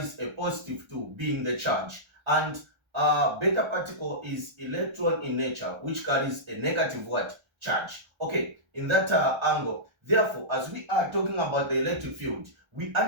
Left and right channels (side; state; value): left; late; 1.3 ms